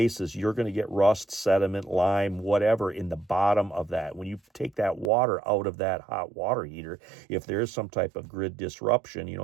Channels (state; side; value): drops out; left; at 5.1 s